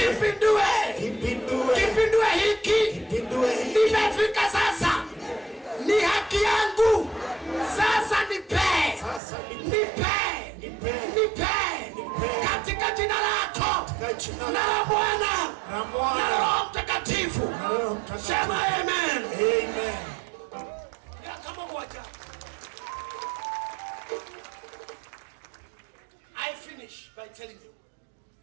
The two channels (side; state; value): left; drops out; at 9.2 s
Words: Kipindue hiki. Nimefika sasa. Ni haki yangu. Sasa nipe. Katika jina lako. Na la Bwana. Na la Roho Mtakatifu. Sema amen. Ya kama moja. I finish by telling you.